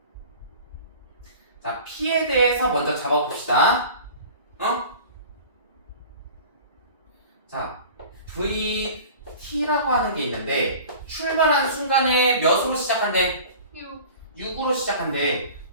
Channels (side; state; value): both; inverted; correlation -0.41